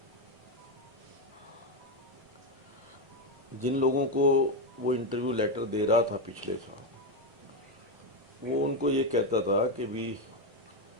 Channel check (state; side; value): normal; both; correlation 0.08